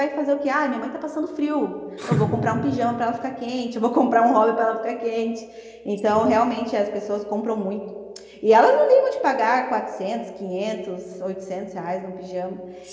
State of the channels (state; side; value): identical; both; correlation 1.00